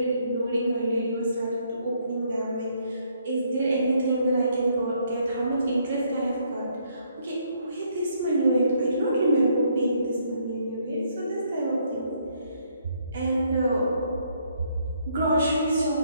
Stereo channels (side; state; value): both; inverted; correlation -0.70